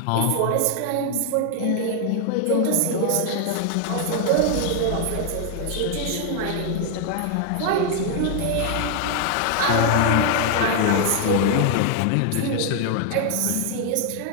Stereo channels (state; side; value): different; both; correlation 0.00